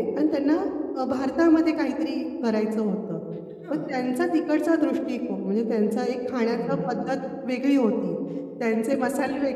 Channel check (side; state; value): both; identical; correlation 1.00